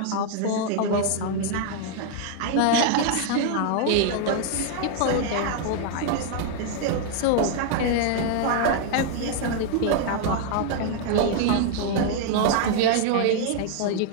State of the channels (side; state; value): both; different; correlation 0.00